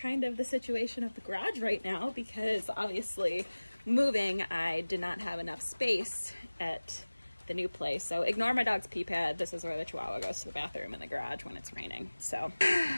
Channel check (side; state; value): both; inverted; correlation -1.00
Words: of the situation of the garage right now because obviously moving I did not have enough space at the new place. So ignore my dog's pee pad. This is where the Chihuahua goes to the bathroom in the garage when it's raining. So